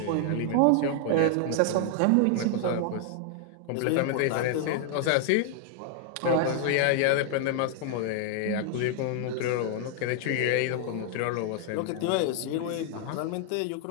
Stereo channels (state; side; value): different; both; correlation 0.00